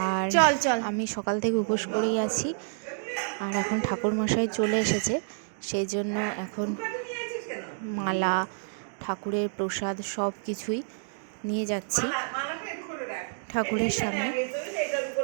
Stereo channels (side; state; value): left; silent; digital silence